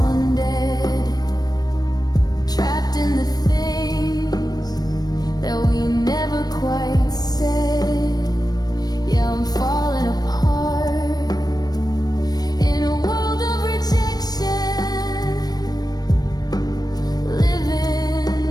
dead, trapped in the things that we never quite said. Yeah, I'm falling apart in a world of rejection,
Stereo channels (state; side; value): late; right; 0.19 ms